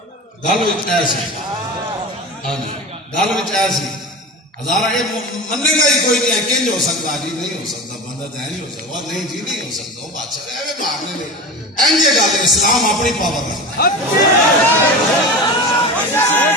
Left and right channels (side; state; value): both; normal; correlation 0.30